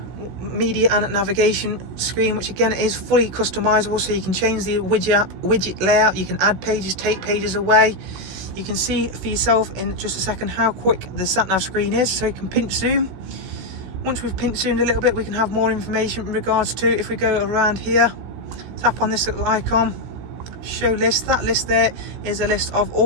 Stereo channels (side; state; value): left; late; 16 ms